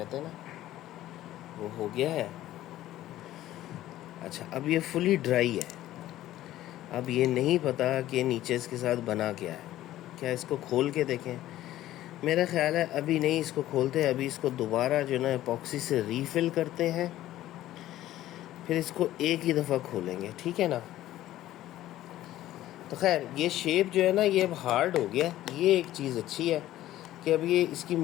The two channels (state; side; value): quieter; right; 14.2 dB